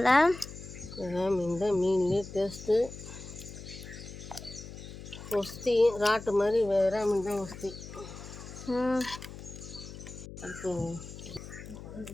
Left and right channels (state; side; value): noise; left; hum, 13 dB below the sound